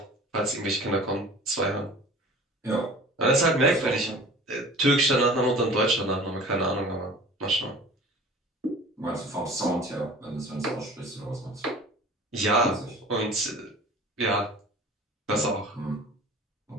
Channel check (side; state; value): both; normal; correlation 0.43